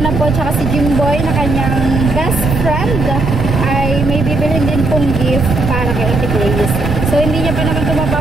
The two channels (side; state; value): right; noise; rumble, 4 dB below the sound